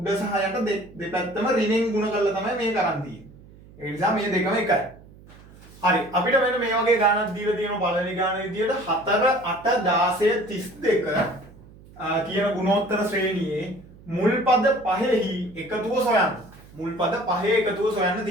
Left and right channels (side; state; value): right; noise; hum, 22 dB below the sound